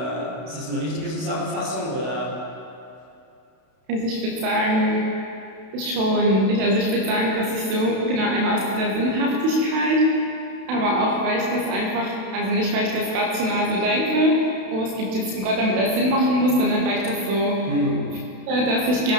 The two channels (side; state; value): left; late; 32 ms